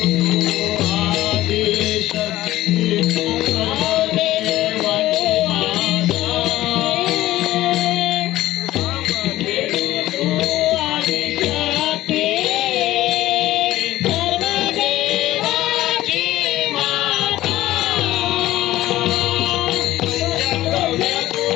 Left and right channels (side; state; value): right; quieter; 15.4 dB